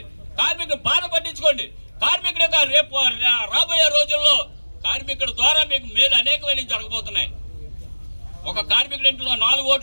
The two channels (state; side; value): inverted; both; correlation -1.00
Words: కార్మికుల బాధ పట్టించుకోండి. కార్మికుడు రేపు రాబోయే రోజుల్లో కార్మికుడి ద్వారా మీకు మేలు అనేకమైన జరగబోతున్నాయి. ఒక కార్మికుడి ఇంట్లో 4